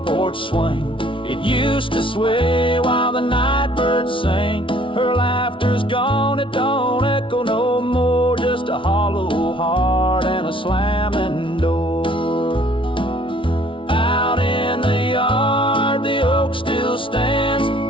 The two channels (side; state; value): right; late; 0.25 ms